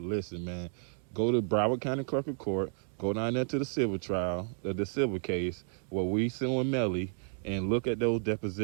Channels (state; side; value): silent; left; 57 dB below the other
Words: listen, man, go to Broward County Clerk of Court, go down there to the civil trial, the civil case where we suing Melly, and look at those